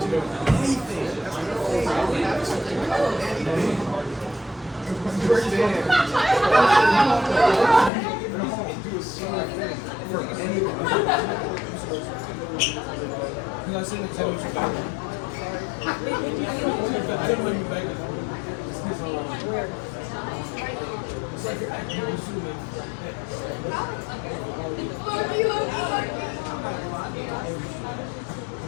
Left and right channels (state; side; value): drops out; right; at 7.9 s